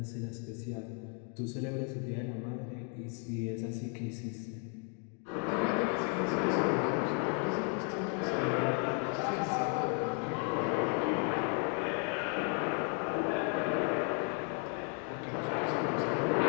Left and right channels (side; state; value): right; quieter; 38.5 dB